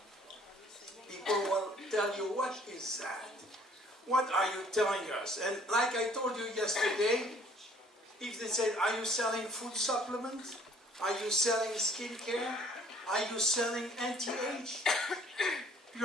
People will tell you, what is that? What are you telling us? And like I told you yesterday, if they said, are you selling food supplements? Are you selling skincare? Are you selling anti-age?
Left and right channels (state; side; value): normal; both; correlation 0.57